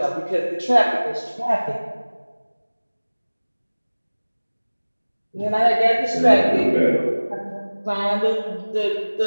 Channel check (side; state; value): both; inverted; correlation -1.00